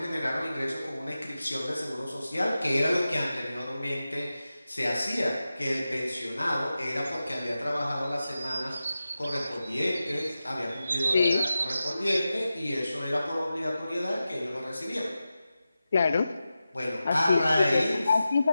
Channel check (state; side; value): inverted; both; correlation -0.93